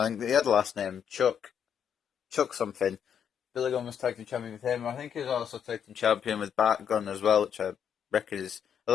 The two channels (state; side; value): quieter; right; 8.2 dB